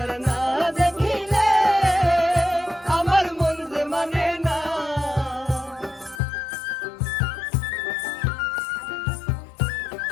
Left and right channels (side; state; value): right; drops out; at 6.2 s